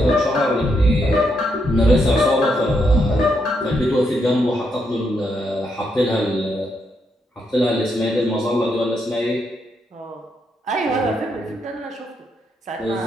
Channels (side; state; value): both; normal; correlation 0.79